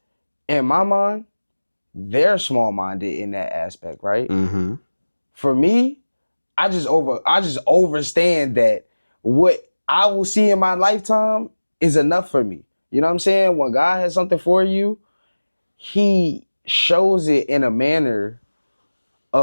in my mind, they're small minded in that aspect, right? Mm-hmm. For me, I just overstand that what I will see in my lifetime is enough for me. You know what I'm saying? When God has something for you, he shows it in a manner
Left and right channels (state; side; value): inverted; both; correlation -1.00